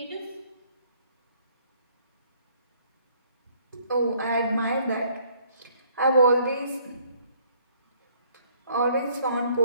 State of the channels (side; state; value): both; inverted; correlation -0.62